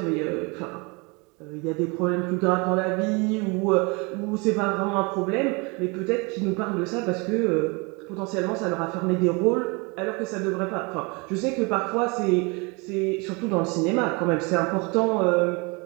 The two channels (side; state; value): left; quieter; 29.0 dB